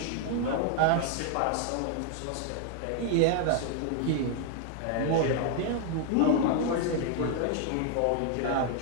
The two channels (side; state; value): both; different; correlation 0.00